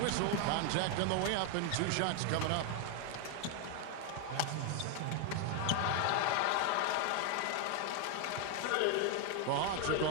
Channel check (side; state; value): both; different; correlation 0.01